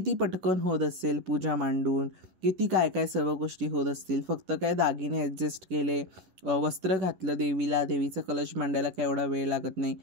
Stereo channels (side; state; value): left; late; 11 ms